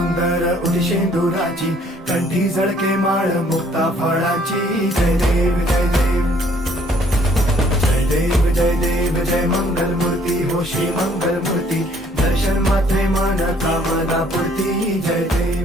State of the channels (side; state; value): both; normal; correlation 0.61